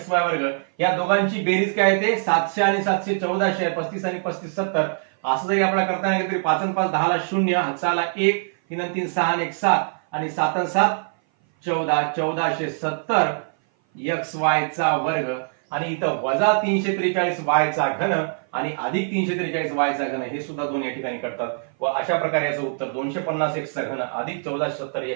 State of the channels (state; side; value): silent; left; 58 dB below the other